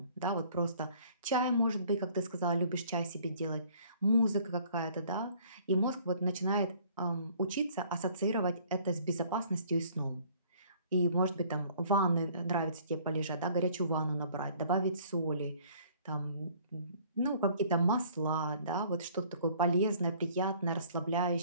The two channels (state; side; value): inverted; both; correlation -0.56